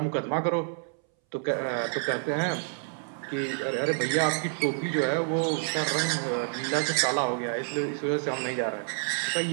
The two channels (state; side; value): silent; left; 59 dB below the other